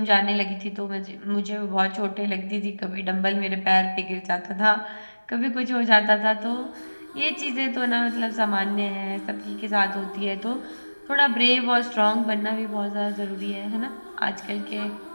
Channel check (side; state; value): both; inverted; correlation -1.00